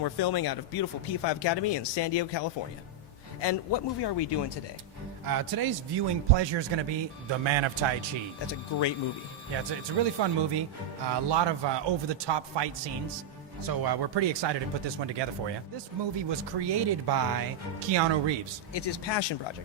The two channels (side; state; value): left; quieter; 3.3 dB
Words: we're filming out of beautiful P5 Academy in San Diego, California. And what movie are we doing today? Today's viewing pleasure is going to be The Man of Tai Chi. That's a great movie. Yeah, it's a really fun movie. A lot of over-the-top fight scenes. So we're pretty excited to put this one together for you. This movie was created by Keanu Reeves. It's his passion